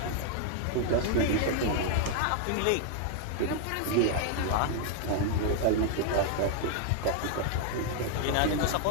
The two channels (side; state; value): both; different; correlation 0.00